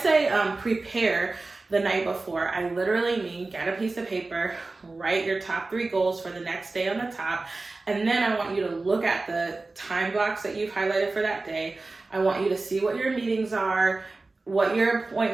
prepare the night before, I literally mean get a piece of paper, write your top 3 goals for the next day on the top, and then I want you to look at the time blocks that you've highlighted for that day. I want you to see what your meetings are, what your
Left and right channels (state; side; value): quieter; left; 3.4 dB